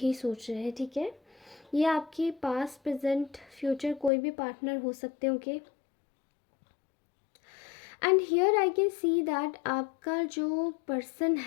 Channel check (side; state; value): right; drops out; at 4.1 s